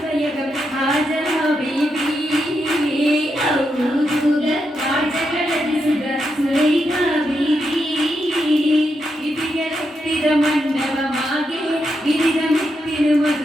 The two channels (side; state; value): both; normal; correlation 0.83